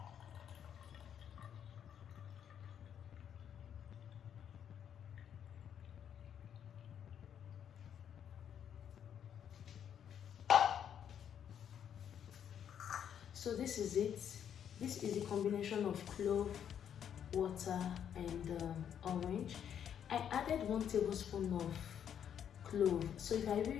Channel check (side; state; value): right; quieter; 8.9 dB